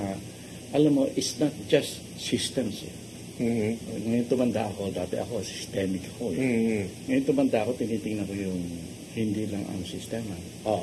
alam mo, it's not just systems eh. Ngayon tumanda ako, dati ako, systemic ako eh. Ngayon tumanda ako, tinitingnan ko yung hindi lang ang sistema.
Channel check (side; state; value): both; identical; correlation 1.00